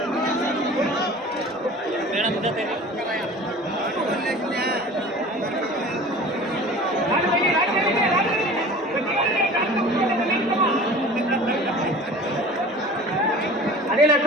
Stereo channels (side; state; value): both; normal; correlation 0.41